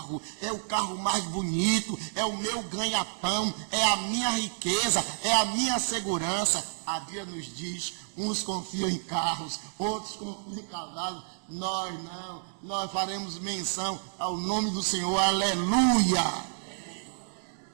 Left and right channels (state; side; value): silent; left; digital silence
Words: é o carro mais bonito, é o meu ganha-pão, é a minha riqueza, é a minha segurança. A Bíblia nos diz: uns confiam em carros, outros confiam em cavalos. Nós não, nós faremos menção ao nome do Senhor. Aleluia!